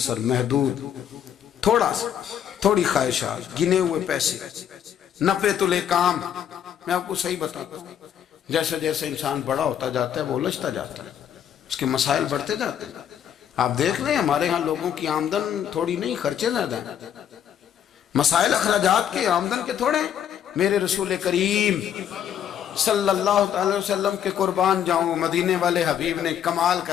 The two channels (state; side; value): quieter; right; 9.4 dB